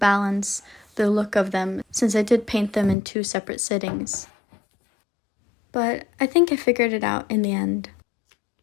the look of them since I did paint them in 2 separate sittings. But I think I figured it out in the end.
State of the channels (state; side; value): drops out; right; at 3.0 s